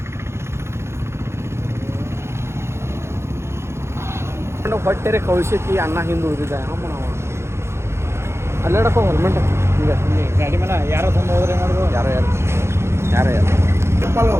ಹೊಟ್ಟೆರೆ ಕಳಿಸೈತಿ. ಅಣ್ಣ ಹಿಂದೆ ಉಳಿದಿದ್ದ ಅಮ್ಮ ನಾವು ಅಲ್ಲೇಡಪ್ಪ ಹೆಲ್ಮೆಟ್ ಹಿಂಗೆ ಗಾಡಿ ಮೇಲೆ ಯಾರೋ ತಂದು ಹೋದ್ರೆ ಮಾಡೋದು. ಯಾರೋ ಯಾರು ಯಾರೋ ಯಾರು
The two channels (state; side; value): late; left; 0.13 ms